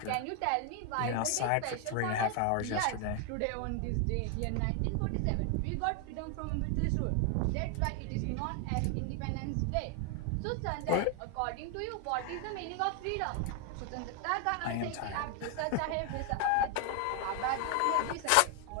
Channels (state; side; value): different; both; correlation 0.00